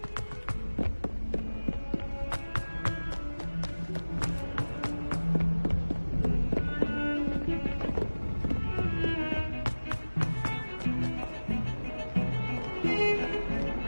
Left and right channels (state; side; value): inverted; both; correlation -1.00